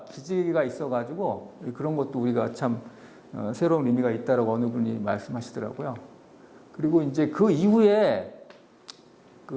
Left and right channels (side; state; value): both; identical; correlation 1.00